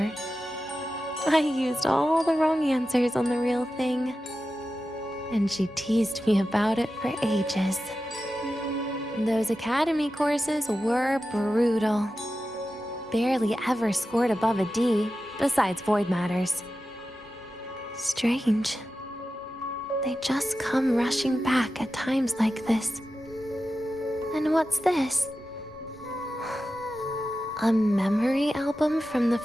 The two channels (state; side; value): normal; both; correlation 0.92